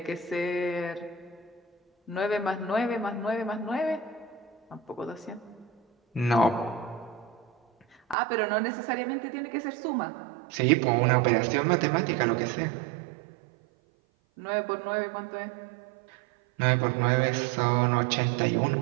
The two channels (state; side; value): drops out; left; at 8.2 s